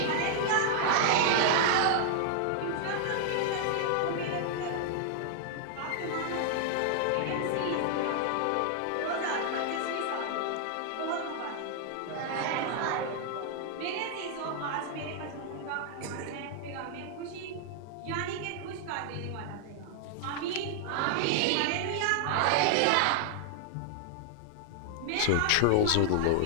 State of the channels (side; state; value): both; different; correlation 0.00